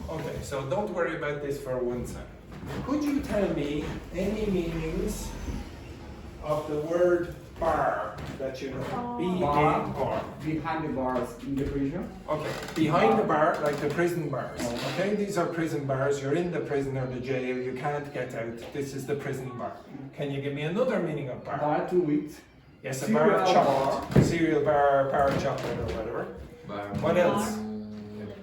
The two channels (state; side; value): identical; both; correlation 1.00